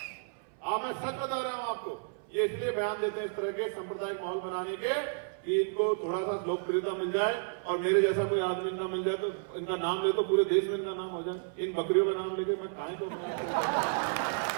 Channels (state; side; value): silent; left; 57 dB below the other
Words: मैं सच बता रहा हूं आपको, ये इसलिए बयान देते हैं इस तरह के सांप्रदायिक माहौल बनाने के कि इनको थोड़ा सा लोकप्रियता मिल जाए, और मेरे जैसा कोई आदमी इनका मिल जाए तो इनका नाम ले तो पूरे देश में इनका नाम हो जाए। इन बकरियों का नाम लेके मैं कहां तो